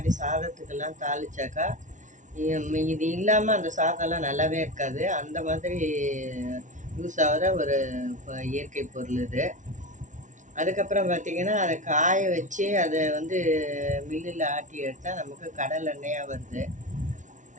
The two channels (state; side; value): late; left; 0.37 ms